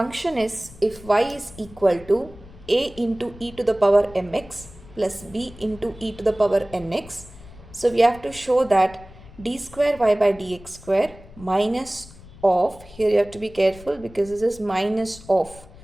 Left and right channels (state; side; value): noise; left; rumble, 20 dB below the sound